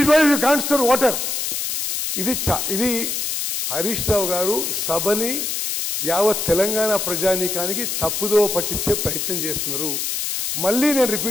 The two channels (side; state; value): left; noise; hiss, 2 dB below the sound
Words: project? You can't store water. ఇది హరీష్ రావు గారు సభని యావత్ తెలంగాణ ప్రజానీకానికి తప్పుదో పట్టించే ప్రయత్నం చేస్తున్నారు. మళ్ళీ నేను